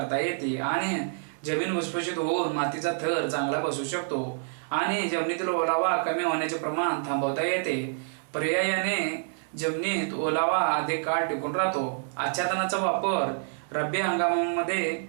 येते आणि जमीन भुसभुशीत होऊन मातीचा थर चांगला बसू शकतो आणि जमिनीतील ओलावा कमी होण्याचे प्रमाण थांबवता येते। पर्यायाने जमिनीत ओलावा अधिक काळ टिकून राहतो। आच्छादनाचा वापर रब्बी हंगामामध्ये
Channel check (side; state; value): left; silent; 58 dB below the other